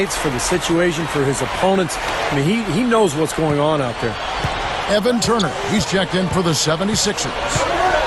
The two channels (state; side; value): identical; both; correlation 1.00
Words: for the situation, for his opponents. I mean, he knows what's going on out there. Evan Turner, he's checked in for the 76ers.